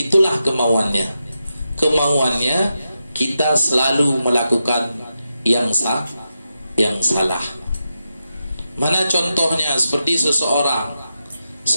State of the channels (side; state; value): both; inverted; correlation -0.88